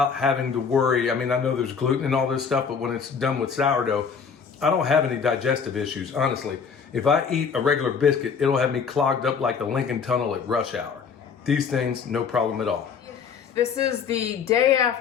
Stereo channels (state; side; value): quieter; right; 6.2 dB